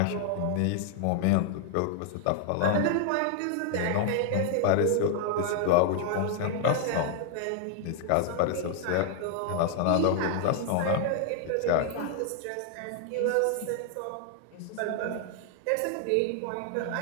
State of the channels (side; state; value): both; different; correlation 0.00